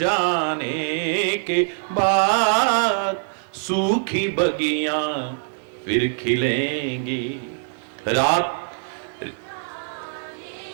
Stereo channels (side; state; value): left; silent; digital silence